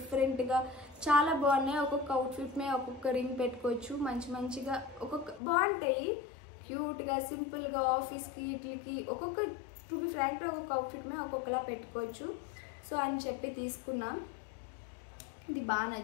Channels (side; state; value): right; drops out; at 5.4 s